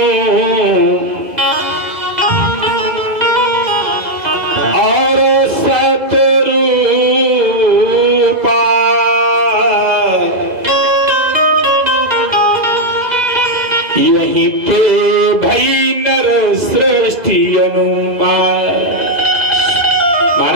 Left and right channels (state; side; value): late; left; 2.0 ms